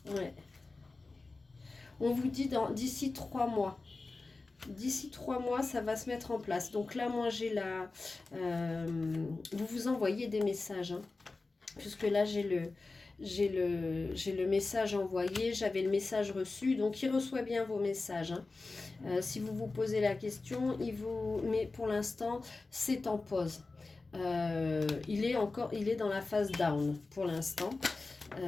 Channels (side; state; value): right; quieter; 3.6 dB